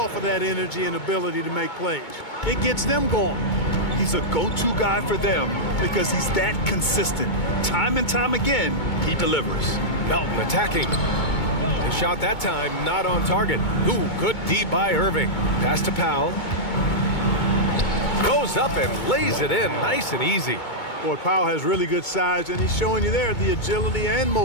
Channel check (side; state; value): right; late; 2.2 ms